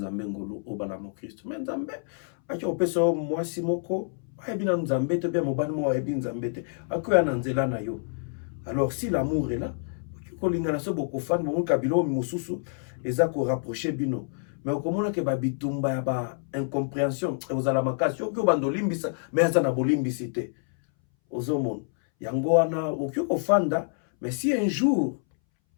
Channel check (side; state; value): right; silent; 60 dB below the other